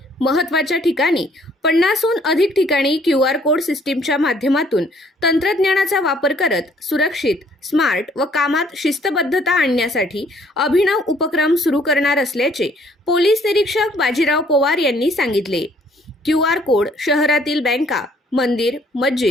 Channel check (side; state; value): both; normal; correlation 0.62